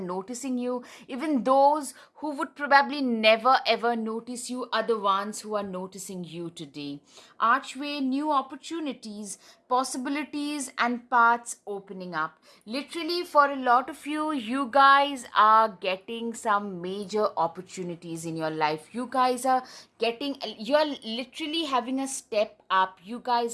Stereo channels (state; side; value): identical; both; correlation 1.00